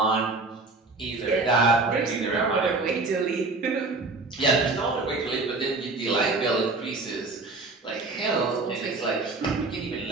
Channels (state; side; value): quieter; left; 3.5 dB